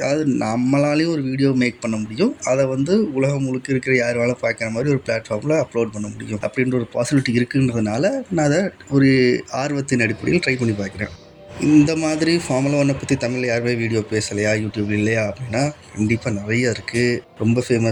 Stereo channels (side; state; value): both; identical; correlation 1.00